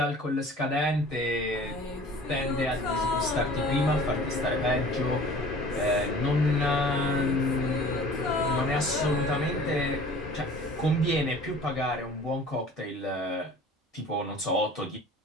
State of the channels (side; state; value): both; normal; correlation 0.46